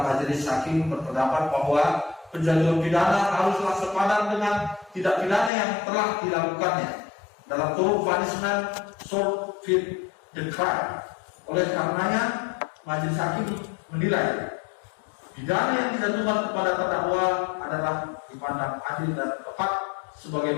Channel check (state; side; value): drops out; right; at 5.5 s